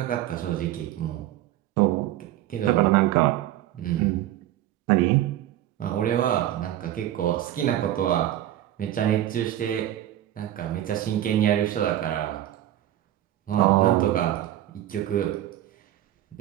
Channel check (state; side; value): quieter; left; 13.1 dB